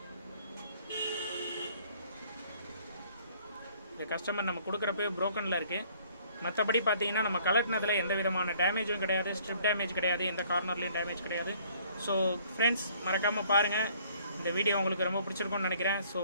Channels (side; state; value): both; inverted; correlation -0.59